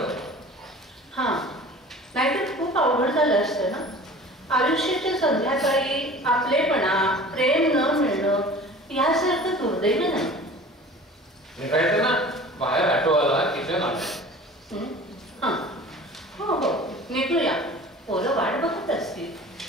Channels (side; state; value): both; normal; correlation 0.42